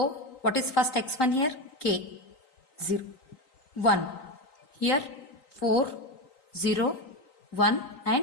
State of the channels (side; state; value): right; late; 3.9 ms